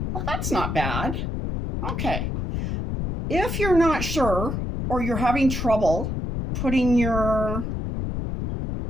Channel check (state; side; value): noise; left; rumble, 3 dB below the sound